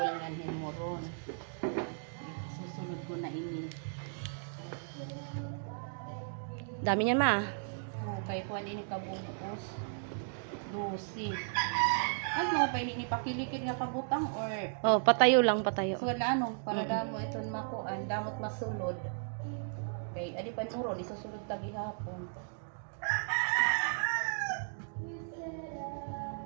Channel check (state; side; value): silent; left; digital silence